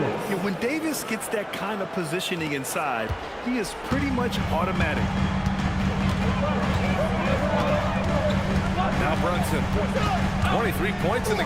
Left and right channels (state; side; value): identical; both; correlation 1.00